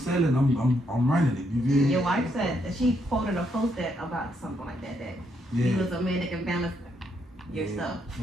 selling, I'm running it. You feel me? Your wife said that she quoted a post that about something like that. That Yeah. you was a man that can balance your stuff.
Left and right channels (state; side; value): normal; both; correlation 0.76